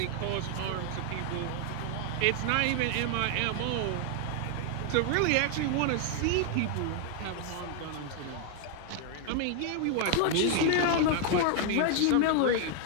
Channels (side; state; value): both; different; correlation 0.00